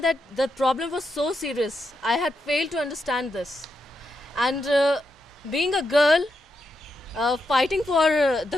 that the problem was so serious. I had failed to understand this. And being a girl, fighting for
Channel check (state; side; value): normal; both; correlation 0.83